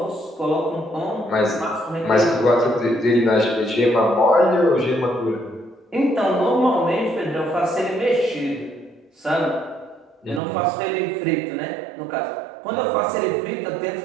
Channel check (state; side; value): drops out; left; at 10.4 s